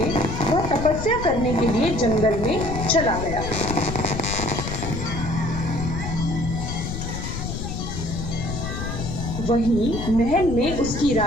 वह तपस्या करने के लिए जंगल में चला गया। वहीं महल में उसकी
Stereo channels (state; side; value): noise; left; rumble, 5 dB below the sound